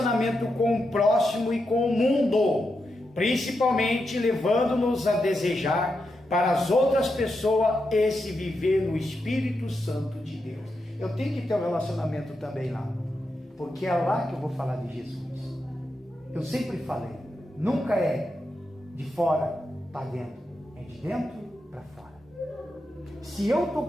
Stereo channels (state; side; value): normal; both; correlation 0.86